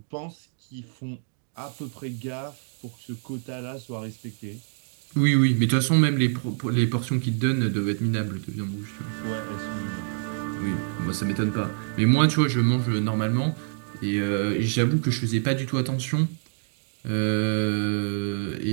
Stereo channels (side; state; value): left; silent; digital silence